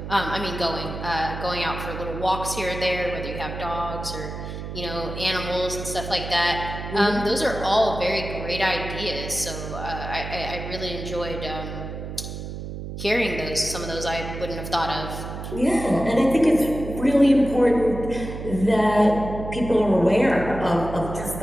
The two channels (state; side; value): noise; right; hum, 8 dB below the sound